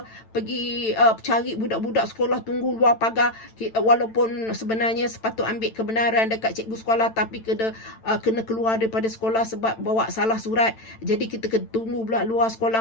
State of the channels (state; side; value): late; right; 9.0 ms